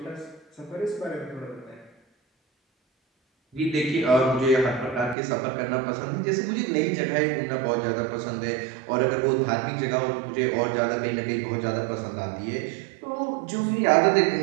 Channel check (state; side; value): drops out; left; at 5.2 s